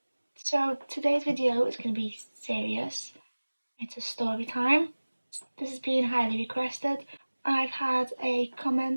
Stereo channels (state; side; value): inverted; both; correlation -1.00